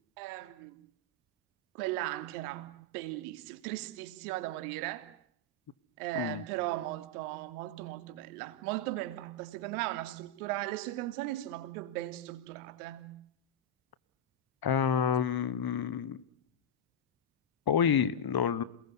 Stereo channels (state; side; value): normal; both; correlation -0.04